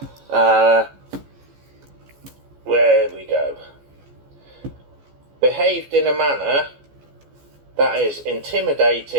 where we go, behaved in a manner that is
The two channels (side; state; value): left; late; 14 ms